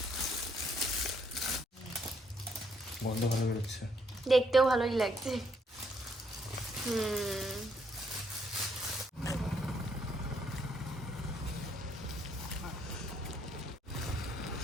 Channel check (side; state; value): both; normal; correlation 0.71